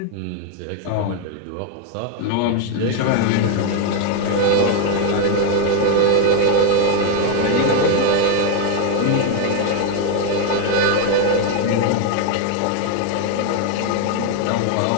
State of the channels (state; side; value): different; both; correlation 0.00